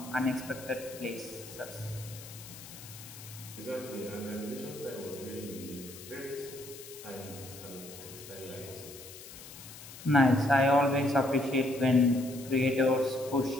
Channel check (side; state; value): left; noise; hiss, 15 dB below the sound